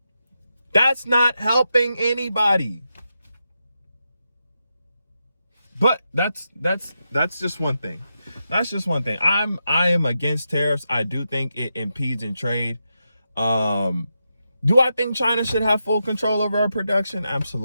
That's not helping anybody. But that's just one thing. That's just one thing. I am against tariffs. I do think it impedes in trade. Do I think China should have full control over our production?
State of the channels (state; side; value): inverted; both; correlation -0.87